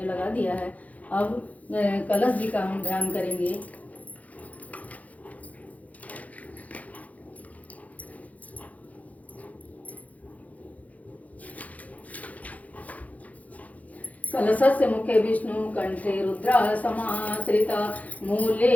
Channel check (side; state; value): right; late; 0.072 ms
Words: लगा दिया है। अब कलश जी का हम ध्यान करेंगे। कलशस्य मुखे विष्णु कंठे रुद्रा समाश्रिता मूले